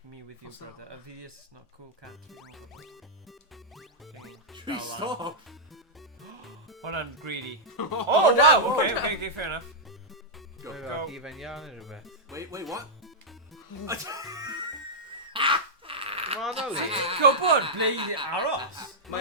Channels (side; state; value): both; normal; correlation -0.10